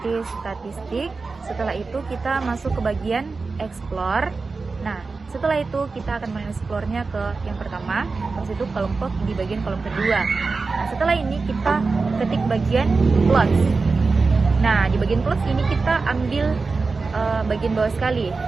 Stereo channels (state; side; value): quieter; left; 4.2 dB